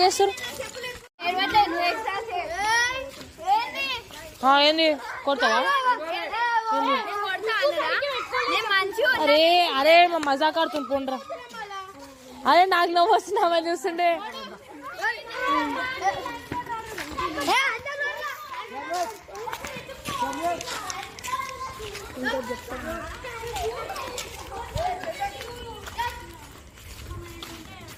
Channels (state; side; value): identical; both; correlation 1.00